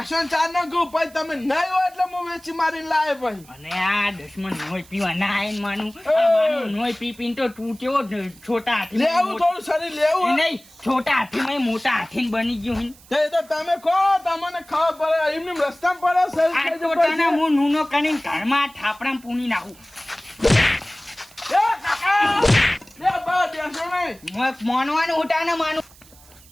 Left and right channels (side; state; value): right; noise; hiss, 24 dB below the sound